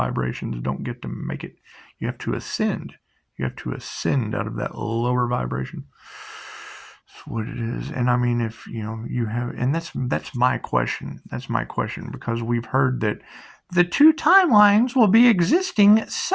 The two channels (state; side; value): identical; both; correlation 1.00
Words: don't get to make it. You have to ascend. You have to ascend out of that lower vibration. That's what it is. And I mean, if you have, and that's my question. That's my question, because we've heard that the two timelines will be existing